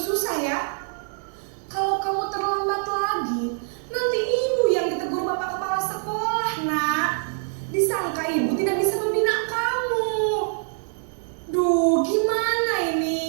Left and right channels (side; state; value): left; silent; 62 dB below the other